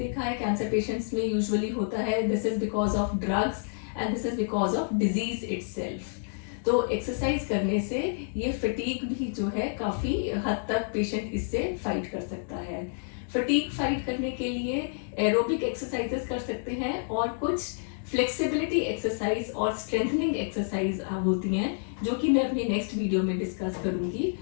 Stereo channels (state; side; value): silent; right; digital silence